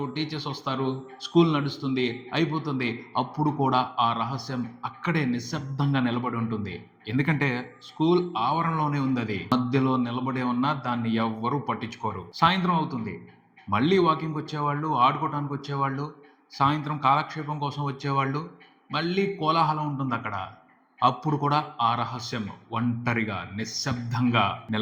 టీచర్స్ వస్తారు, స్కూల్ నడుస్తుంది, అయిపోతుంది. అప్పుడు కూడా ఆ రహస్యం అక్కడే నిశ్శబ్దంగా నిలబడి ఉంటుంది. ఎందుకంటే స్కూల్ ఆవరణలోనే ఉంది. అది మధ్యలో నిలబడే ఉన్నా దాన్ని ఎవ్వరూ పట్టించుకోరు. సాయంత్రం అవుతుంది. మళ్ళీ వాకింగ్కి వచ్చేవాళ్ళు, ఆడుకోవడానికి వచ్చేవాళ్ళు, సాయంత్రం కాలక్షేపం కోసం వచ్చేవాళ్ళు, మళ్ళీ కోలాహలం ఉంటుంది అక్కడ. అప్పుడు కూడా ఆ రహస్యం ఒంటరిగా నిశ్శబ్దంగా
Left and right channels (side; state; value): both; identical; correlation 1.00